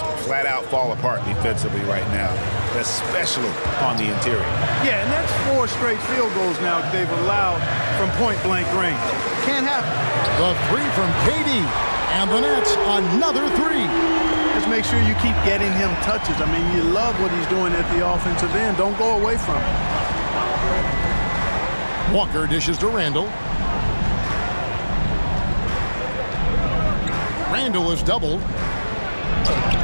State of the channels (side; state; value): both; inverted; correlation -1.00